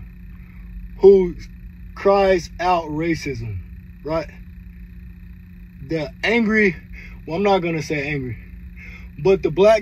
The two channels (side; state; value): both; identical; correlation 1.00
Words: who cries out racism, right? The angry, well, I'm not gonna say angry, but the